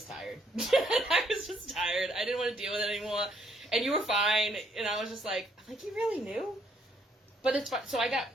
tired. I was just tired. I didn't want to deal with it anymore. And you were fine, and I was just like, you really knew? But it's fun. So I got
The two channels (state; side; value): normal; both; correlation 0.69